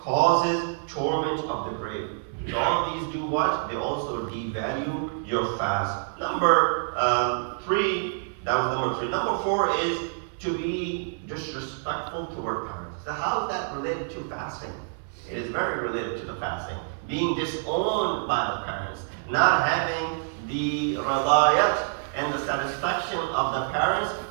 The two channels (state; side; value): silent; left; 60 dB below the other